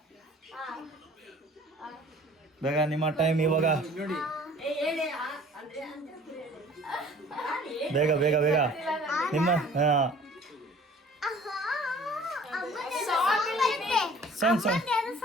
ಬೇಗ, ನಿಮ್ಮ ಟೈಮ್ ಇವಾಗ. ಬೇಗ ನಿಮ್ಮ ಸಾಂಗ್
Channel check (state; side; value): normal; both; correlation 0.50